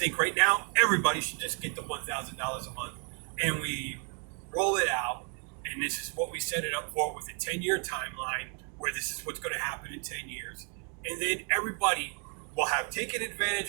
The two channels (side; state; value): left; quieter; 39.5 dB